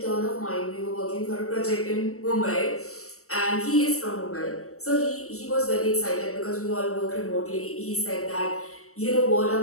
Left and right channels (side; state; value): right; late; 0.63 ms